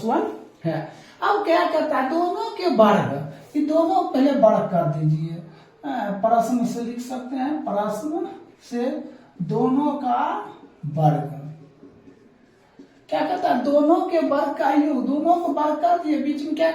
1 है। अब क्या करता है दोनों के वर्ग, ये दोनों पहले वर्ग कर दीजिए, प्रश्न से लिख सकते हैं, प्रश्न से दोनों का वर्ग क्या कहता है दोनों के वर्ग का योग, दोनों को वर्ग कर दिए, बीच में क्या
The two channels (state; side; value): identical; both; correlation 1.00